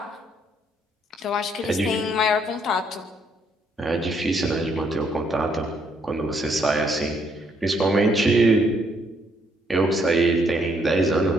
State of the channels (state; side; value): normal; both; correlation 0.70